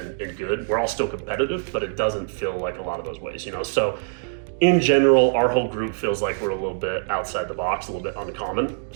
good. We're all still competitive, but it doesn't feel like a lot of those ways, you know. So in general, our whole group feels like we're a little bit outside the box, a little bit uncommon.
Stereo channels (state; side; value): silent; left; digital silence